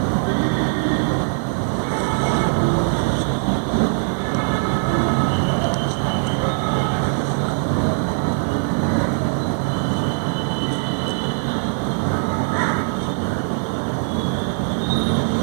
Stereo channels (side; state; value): left; silent; digital silence